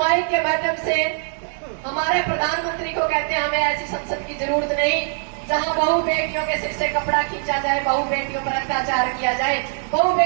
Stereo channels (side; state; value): left; silent; 60 dB below the other